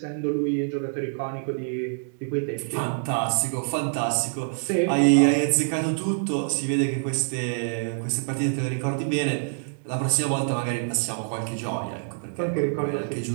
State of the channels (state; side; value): silent; left; digital silence